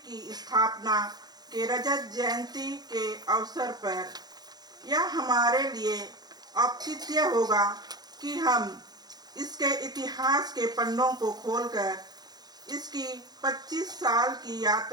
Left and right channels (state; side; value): late; left; 0.19 ms